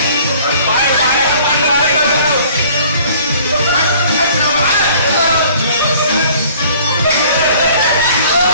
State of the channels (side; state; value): both; inverted; correlation -0.53